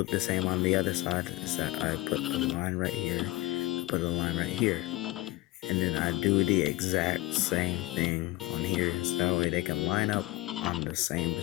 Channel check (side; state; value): right; quieter; 19.9 dB